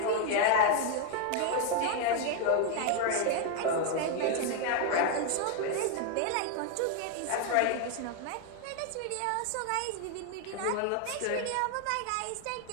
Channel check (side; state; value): both; different; correlation 0.00